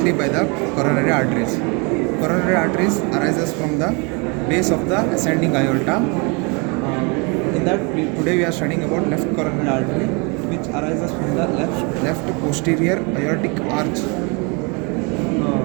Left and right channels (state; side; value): quieter; left; 31.5 dB